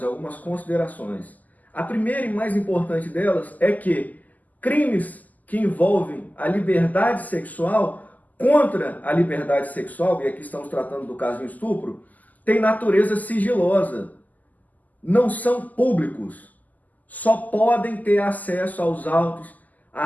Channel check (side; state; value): right; late; 0.080 ms